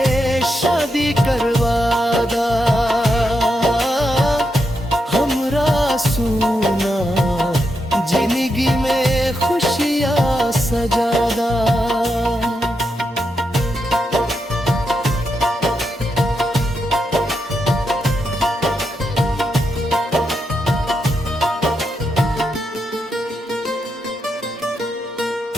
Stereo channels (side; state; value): both; normal; correlation 0.84